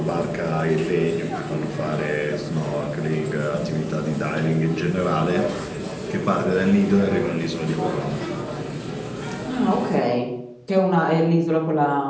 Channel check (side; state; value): both; identical; correlation 1.00